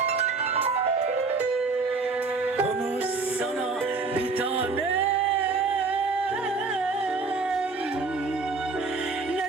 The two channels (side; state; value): left; quieter; 4.1 dB